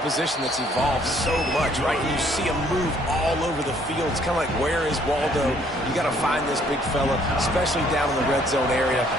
position that's evolved so much, right? You see him move all over the field. It's kind of like, where is Waldo? You got to find this big fella, especially down in the red zone area.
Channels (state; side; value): normal; both; correlation 0.63